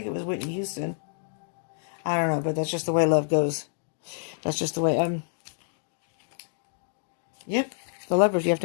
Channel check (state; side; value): silent; right; digital silence